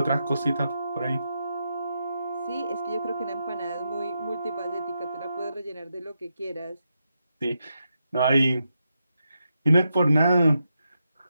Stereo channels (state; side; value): inverted; both; correlation -0.85